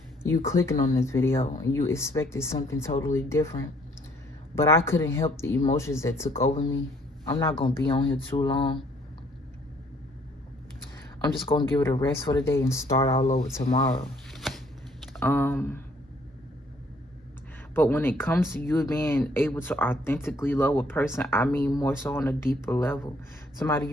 You clicking on this video and you expected something totally different. But I couldn't help the emotions that took over me. I'm not going to be on here too long. I'm just going to give it a rest for the day and start all over tomorrow. But when it comes to you being able to authentically love a person, I mean more so on a deeper level. Somebody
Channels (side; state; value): both; normal; correlation 0.63